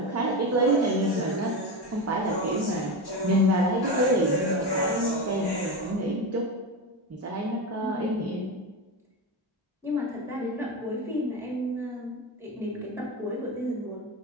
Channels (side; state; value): both; normal; correlation 0.19